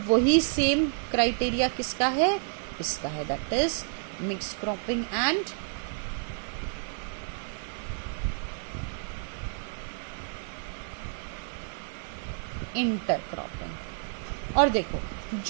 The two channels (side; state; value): left; silent; digital silence